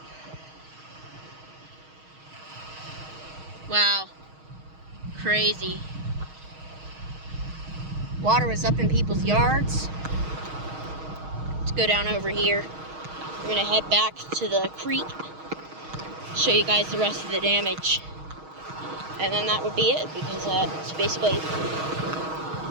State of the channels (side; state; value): left; late; 6.4 ms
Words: Wow, crazy. Water was up in people's yards. Let's go down over here. We're gonna head back to the creek, show you guys the rest of the damage. And then that would be it, because it's basically